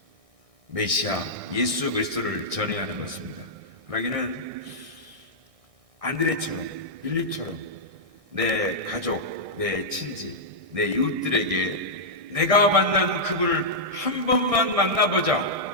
메시아 예수 그리스도를 전해야 하는 것입니다. 그러기는 안드레처럼, 빌립처럼 내 가족, 내 친지, 내 이웃들에게 내가 만난 그분을 한 번만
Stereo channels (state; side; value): late; left; 1.6 ms